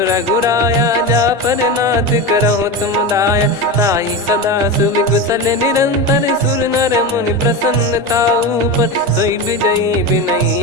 रघुराया, जा पर नाथ करहु तुम दाया। ताई सदा सुविकुशल निरंतर, सुर नर मुनि प्रसन्नता ऊपर। सोई विजयी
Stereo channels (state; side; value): normal; both; correlation 0.21